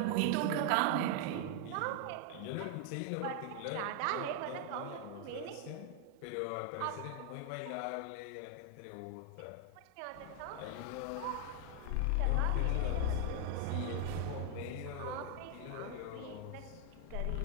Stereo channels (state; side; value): different; both; correlation 0.00